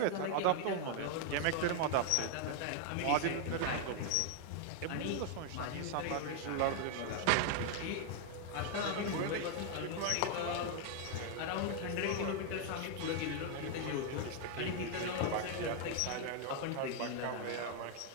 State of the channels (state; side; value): different; both; correlation 0.00